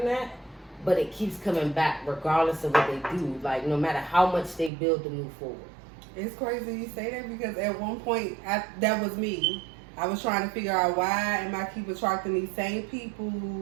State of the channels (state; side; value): drops out; left; at 4.7 s